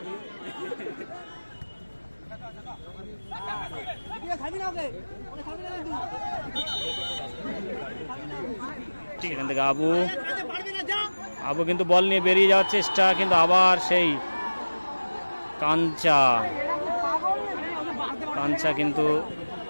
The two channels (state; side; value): inverted; both; correlation -1.00